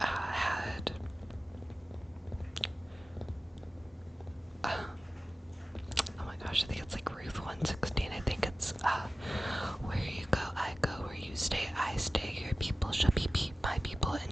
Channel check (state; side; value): normal; both; correlation 0.95